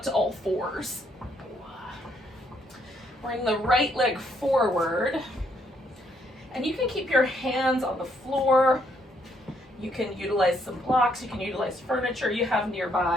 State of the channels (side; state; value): both; normal; correlation 0.71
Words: to all fours. Bring the right leg forward. And you can keep your hands on the floor. You can utilize some blocks. You can utilize furniture you have